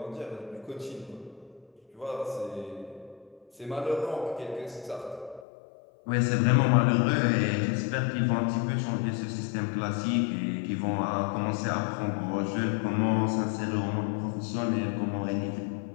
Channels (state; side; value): drops out; right; at 5.5 s